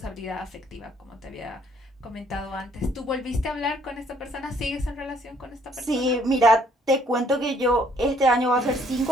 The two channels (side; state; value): both; normal; correlation 0.64